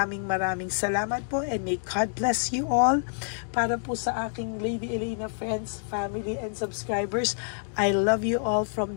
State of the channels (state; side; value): silent; right; digital silence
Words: salamat po and may God bless you all. Para po sa aking Lady Elena friends, family and subscribers, I love you all